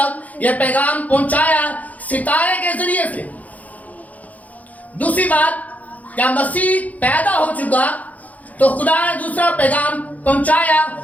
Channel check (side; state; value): right; late; 0.075 ms